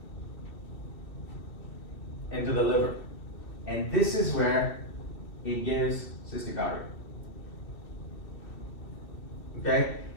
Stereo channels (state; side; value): late; right; 2.6 ms